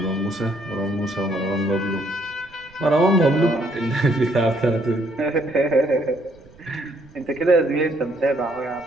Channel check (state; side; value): noise; right; rumble, 26 dB below the sound